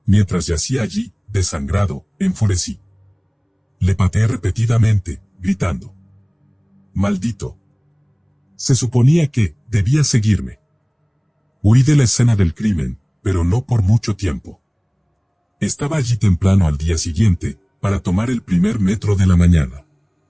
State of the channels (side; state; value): both; identical; correlation 1.00